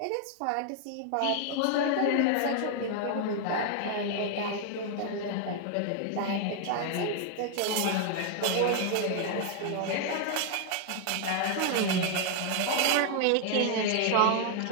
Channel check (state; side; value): different; both; correlation 0.00